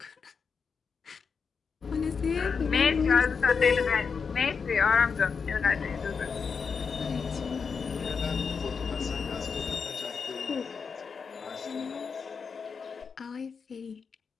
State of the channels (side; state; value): right; quieter; 5.7 dB